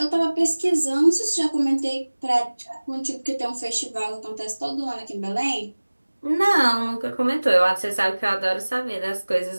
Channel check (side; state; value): both; inverted; correlation -1.00